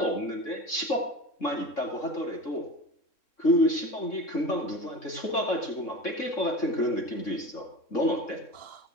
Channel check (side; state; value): right; late; 3.6 ms